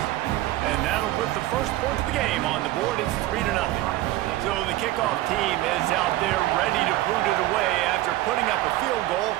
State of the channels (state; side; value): quieter; left; 16.0 dB